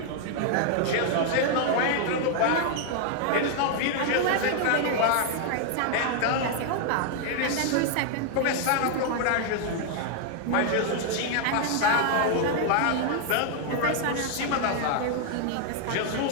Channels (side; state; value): both; different; correlation 0.00